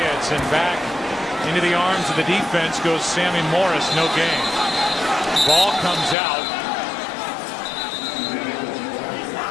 and back into the arms of the defense goes Sammy Morris. No gain. Ball comes out.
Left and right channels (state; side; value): drops out; right; at 6.2 s